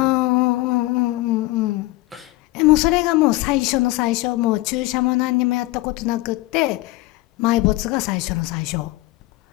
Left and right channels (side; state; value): right; quieter; 19.3 dB